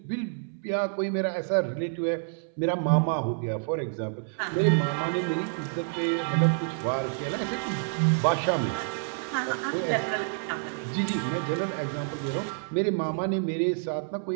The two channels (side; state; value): left; silent; 59 dB below the other